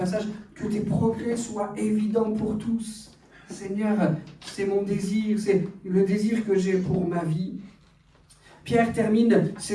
que tes progrès soient évidents pour tous. Seigneur, c'est mon désir, c'est le désir que j'ai pour ma vie. Pierre termine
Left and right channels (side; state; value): both; identical; correlation 1.00